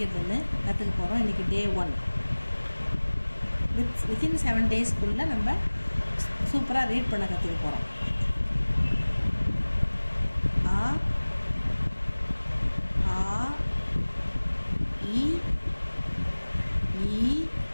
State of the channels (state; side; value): inverted; both; correlation -1.00